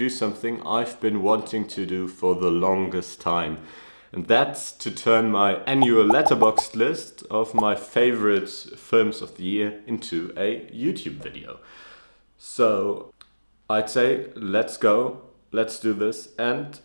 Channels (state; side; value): inverted; both; correlation -1.00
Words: something I've been wanting to do for the longest time. And that's to turn my annual Letterboxd list of my favorite films of the year into a YouTube video. So I'd say let's go, let's do this, and